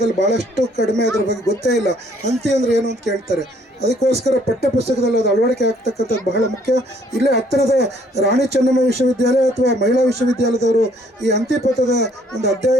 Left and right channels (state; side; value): normal; both; correlation 0.63